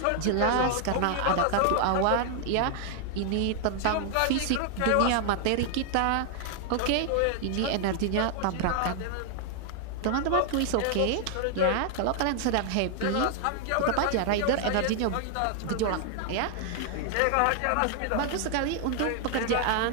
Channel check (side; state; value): both; different; correlation 0.00